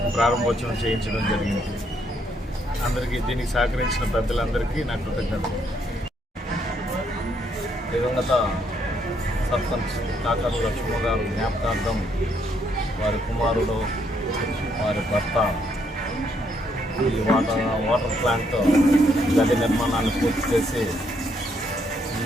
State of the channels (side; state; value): both; normal; correlation 0.72